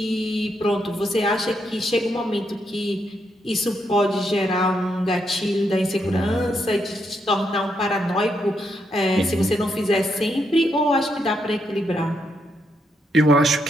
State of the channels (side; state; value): both; normal; correlation 0.79